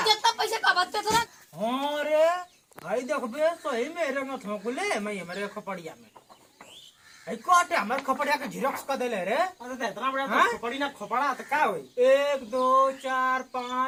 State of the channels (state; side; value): identical; both; correlation 1.00